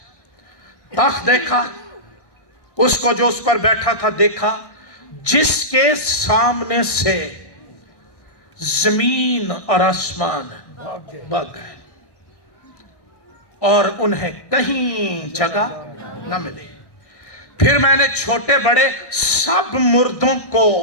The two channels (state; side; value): late; right; 1.6 ms